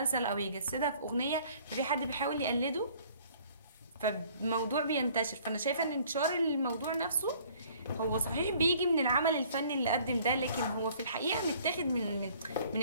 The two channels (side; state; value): both; inverted; correlation -0.56